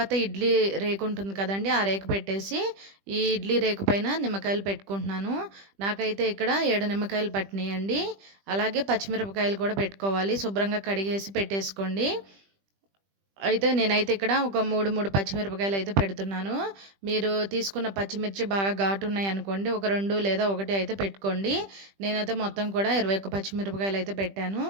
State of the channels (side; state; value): left; late; 20 ms